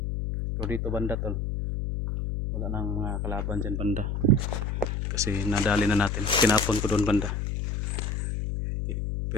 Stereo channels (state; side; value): noise; left; hum, 1 dB below the sound